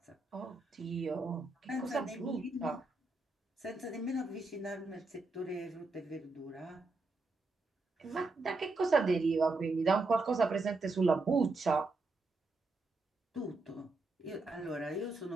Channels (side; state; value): left; quieter; 3.3 dB